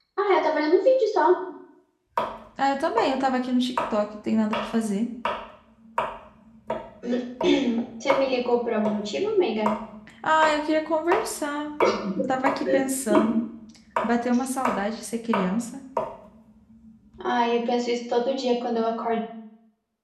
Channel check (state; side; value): identical; both; correlation 1.00